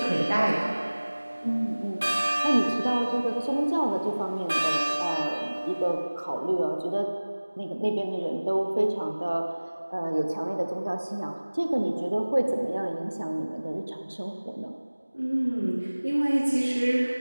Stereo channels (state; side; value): inverted; both; correlation -1.00